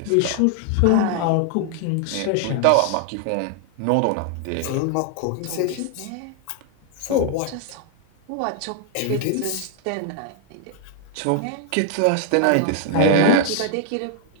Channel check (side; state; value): both; different; correlation 0.00